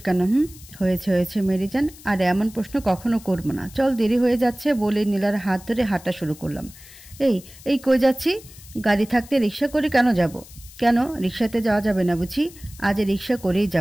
কেন? হয়েছে হয়েছে মেরিজান, আর এমন প্রশ্ন কখনো করবো না। চল, দেরি হয়ে যাচ্ছে বলে নীলার হাত ধরে হাঁটা শুরু করলাম। এই এই কই যাচ্ছি? গাড়ি থাকতে রিক্সা করে কেন যাব? কেন রিক্সাতে যাওয়া যাবে না বুঝি? আজ রিক্সা করেই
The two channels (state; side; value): noise; left; hiss, 20 dB below the sound